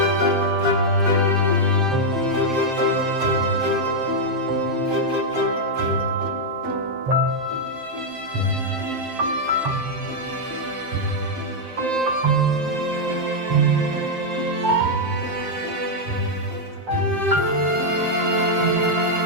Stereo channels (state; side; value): late; left; 7.6 ms